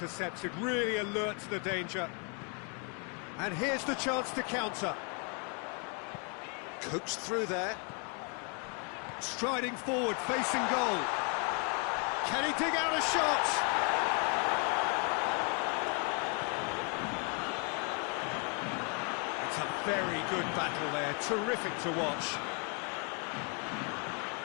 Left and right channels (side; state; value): right; quieter; 37.9 dB